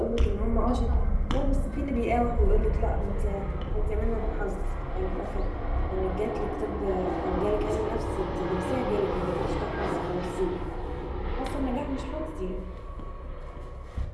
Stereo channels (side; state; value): both; identical; correlation 1.00